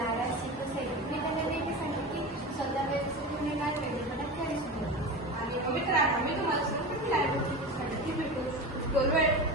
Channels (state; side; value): normal; both; correlation 0.27